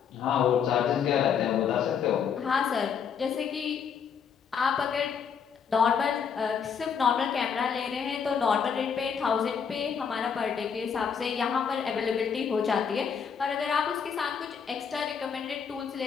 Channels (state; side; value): quieter; right; 7.0 dB